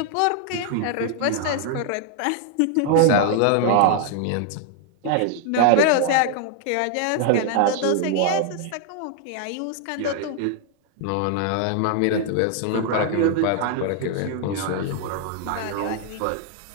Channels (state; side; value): different; both; correlation 0.00